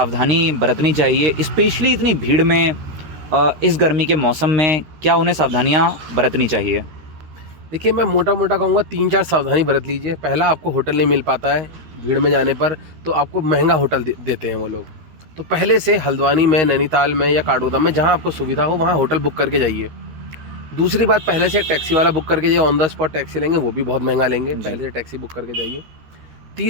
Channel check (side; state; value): left; late; 13 ms